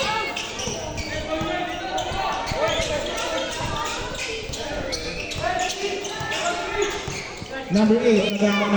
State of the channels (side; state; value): both; identical; correlation 1.00